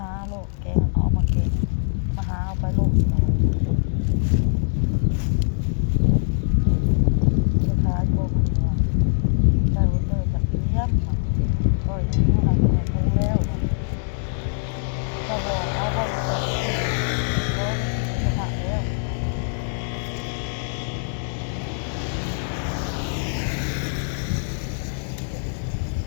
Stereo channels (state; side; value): silent; right; digital silence